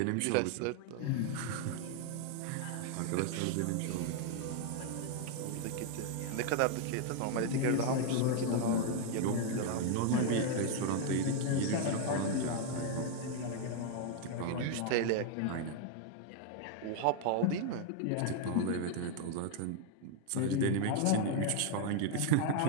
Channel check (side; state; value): both; different; correlation 0.00